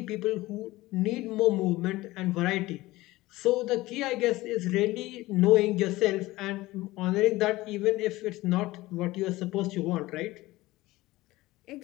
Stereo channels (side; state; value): right; quieter; 18.7 dB